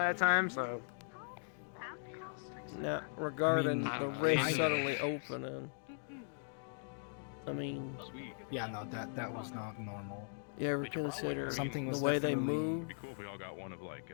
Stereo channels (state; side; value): silent; right; digital silence